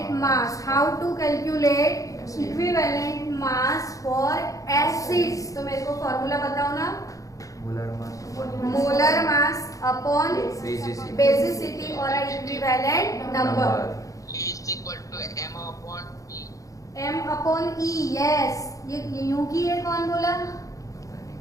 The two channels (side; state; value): right; late; 0.16 ms